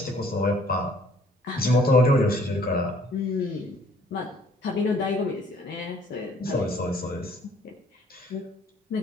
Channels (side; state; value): both; normal; correlation 0.59